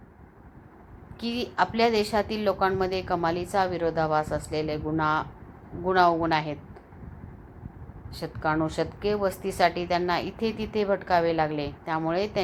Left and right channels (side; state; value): both; identical; correlation 1.00